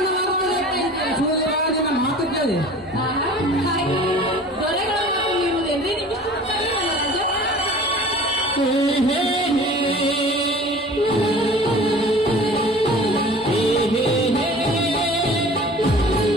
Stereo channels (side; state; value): both; normal; correlation 0.43